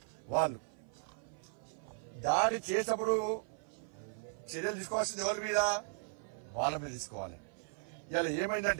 వాళ్ళు. దాడి చేసినప్పుడు చర్యలు తీసుకోవాల్సింది ఎవరి మీద? వాళ్ళ మీద తీసుకోవాలి. ఇలా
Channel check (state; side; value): silent; left; 53 dB below the other